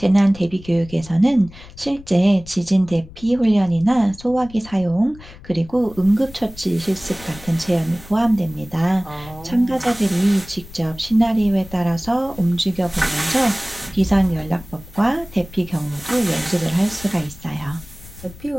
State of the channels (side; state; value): left; noise; rumble, 19 dB below the sound